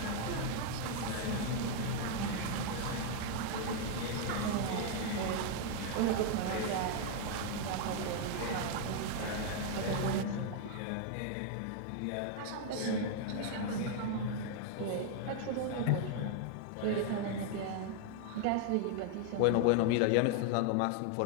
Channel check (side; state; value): both; different; correlation 0.00